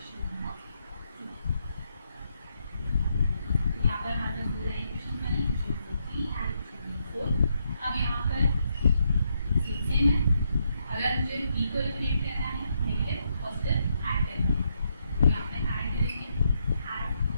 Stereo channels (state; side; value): inverted; both; correlation -0.79